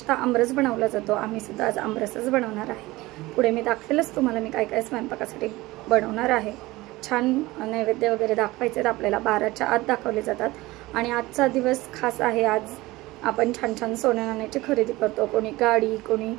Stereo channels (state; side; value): quieter; left; 19.7 dB